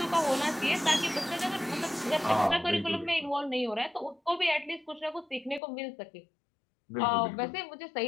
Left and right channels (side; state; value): right; drops out; at 5.6 s